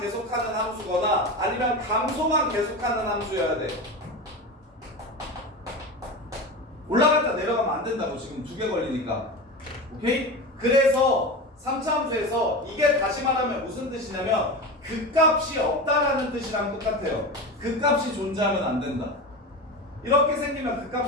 함수거나 아니면 감소만 계속하는 함수여야 돼. 올라갔다 내려가면 안 된다고. 지금 2개 걸리니까. 오케이? 그래서 3차 함수에서 이게 다시 말하면 무슨 뜻이냐면 극값이 없다라는 뜻이랑 똑같아요. 극값이 존재하면 안 된다. 이렇게 생기면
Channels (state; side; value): normal; both; correlation 0.25